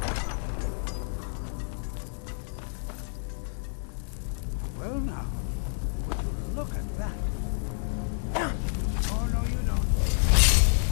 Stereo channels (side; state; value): right; silent; digital silence